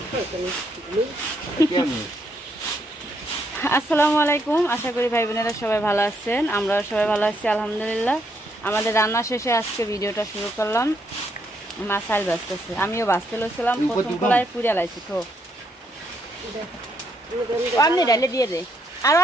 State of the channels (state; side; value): normal; both; correlation 0.74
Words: আসসালামু আলাইকুম, আশা করি ভাই বোনেরা সবাই ভালো আছেন। আমরা সবাই ভালো আছি আলহামদুলিল্লাহ। আমাদের রান্না শেষে আজকে ভিডিওটা শুরু করলাম। মা চাল বাঁচতেছে, আমিও বাঁচতে লইছিলাম। প্রথম কলাই পুড়ে লাইছি তো আপনি ডালে দিয়ে দে। আরো